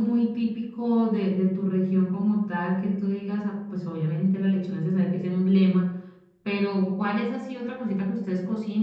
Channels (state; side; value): identical; both; correlation 1.00